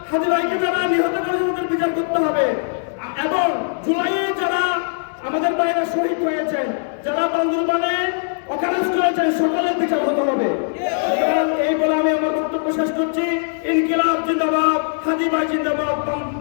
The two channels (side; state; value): right; silent; digital silence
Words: হাজি ভাইকে যারা নিহত করেছে তাদের বিচার করতে হবে এবং জুলাইয়ে যারা আমাদের বাইরে শহীদ হয়েছেন, যারা বান্দরবানে অকারেন্স করেছেন, সকলের বিচার হতে হবে। এই বলে আমি আমার বক্তব্য শেষ করছি। ইনকিলাব জিন্দাবাদ, হাজি ভাই জিন্দাবাদ,